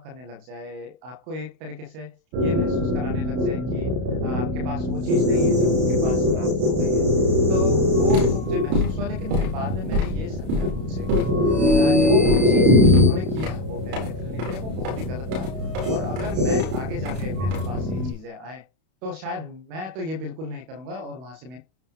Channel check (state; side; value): late; left; 32 ms